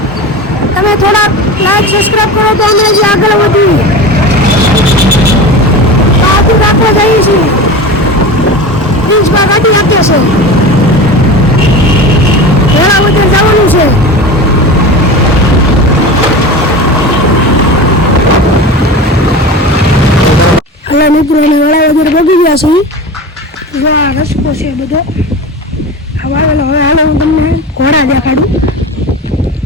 તમે થોડા લાઈક સબસ્ક્રાઈબ કરો તો અમે જે આગળ વધીએ. બહાદુર રાખવા જઈએ છીએ. પ્રિન્સમાં ગાડી આપે છે. વેળાવદર જવાનું છે. એટલે મિત્રો અમે વેળાવદર પહોંચી ગયા છીએ. જો આ રસ્તો છે બધો વાવેલો. હવે હાલો હું તમને ઘોડા દેખાડું.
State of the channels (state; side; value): normal; both; correlation 0.30